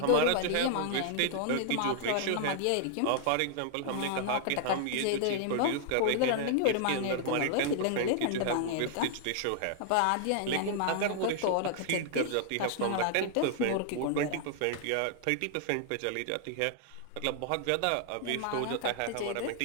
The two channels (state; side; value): different; both; correlation -0.01